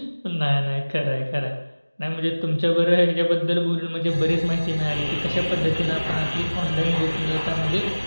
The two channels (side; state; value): both; inverted; correlation -1.00